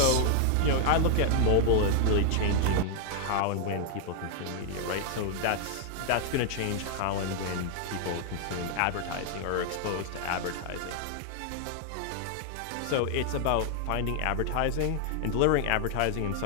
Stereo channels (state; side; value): different; both; correlation 0.00